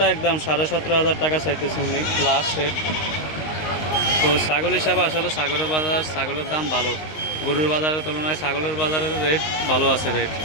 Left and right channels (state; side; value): late; right; 19 ms